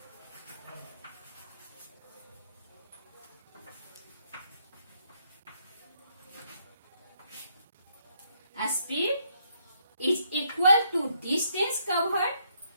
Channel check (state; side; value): inverted; both; correlation -0.72